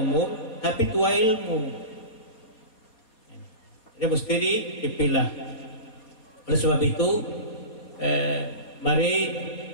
tapi tua ilmu. Jadi mesti dipilah. Oleh sebab itu, mari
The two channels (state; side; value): late; right; 4.3 ms